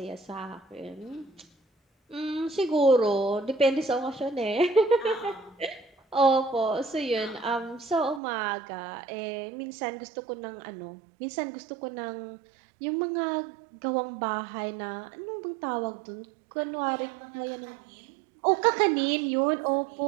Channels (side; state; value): left; drops out; at 8.2 s